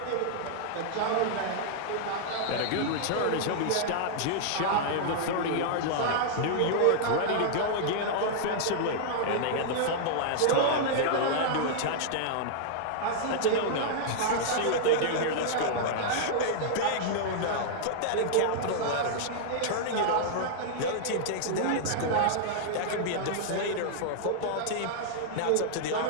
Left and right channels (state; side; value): different; both; correlation -0.01